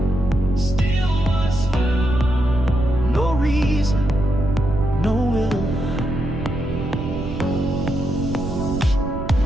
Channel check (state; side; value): noise; right; rumble, 6 dB below the sound